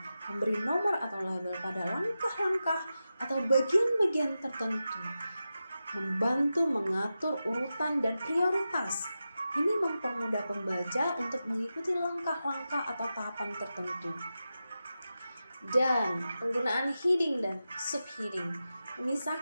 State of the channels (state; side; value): inverted; both; correlation -0.91